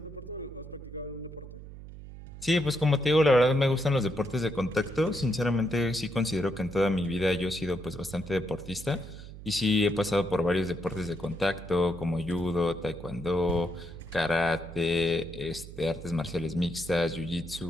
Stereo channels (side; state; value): right; noise; hum, 14 dB below the sound